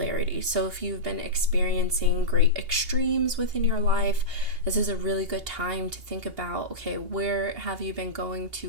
So if you've been experiencing great extremes within your life, this is a really good time to think about, okay, where have you been going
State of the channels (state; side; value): late; left; 2.8 ms